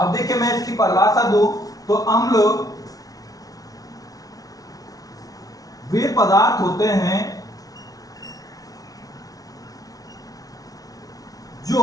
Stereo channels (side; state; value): right; late; 0.18 ms